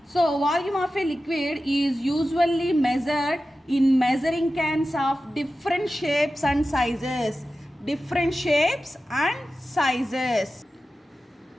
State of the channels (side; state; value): both; normal; correlation 0.94